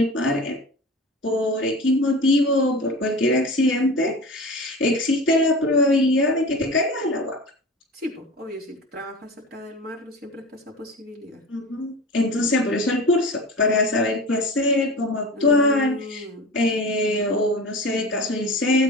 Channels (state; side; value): normal; both; correlation 0.33